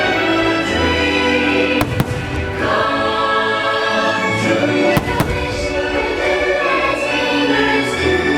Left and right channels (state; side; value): identical; both; correlation 1.00